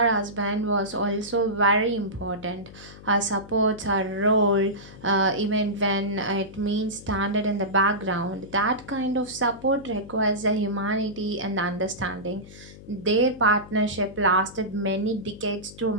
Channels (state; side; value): noise; left; hum, 18 dB below the sound